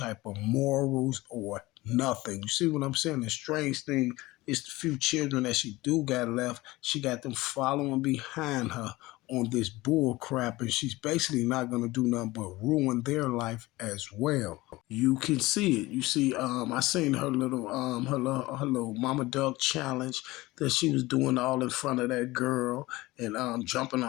of morals or nothing. You see what I'm saying? The strange thing is the few children that she do got left, she got them following behind her on this bull crap, and she's basically not gonna do nothing but ruin their life as well. You can see it. You see, I seen her little Mama Duck challenge that she was doing all in front of that girl and jumping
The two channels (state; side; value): quieter; right; 19.8 dB